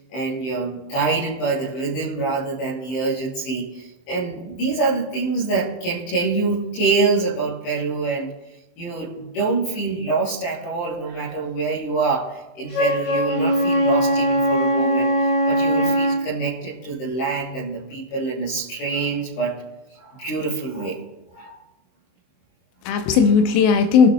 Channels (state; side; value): late; right; 23 ms